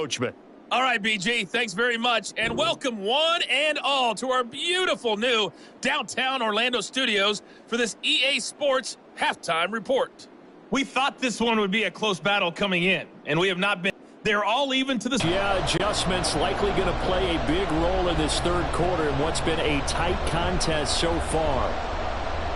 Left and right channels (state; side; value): identical; both; correlation 1.00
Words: All right, BG, thanks very much, and welcome one and all to our beautiful new downtown Orlando studios for this EA Sports Halftime Report. We thought this one would be a close battle coming in, and we have not been. They're all even to this. Yeah, adjustments likely going to play a big role in this third quarter in what's been a tight contest so far.